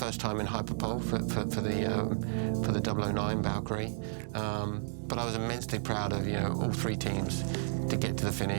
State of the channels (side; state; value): left; silent; 56 dB below the other